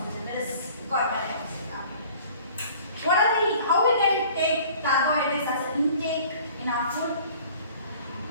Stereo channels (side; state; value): both; inverted; correlation -0.50